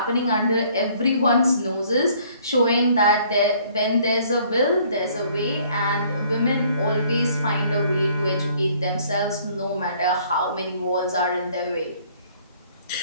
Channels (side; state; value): both; inverted; correlation -0.60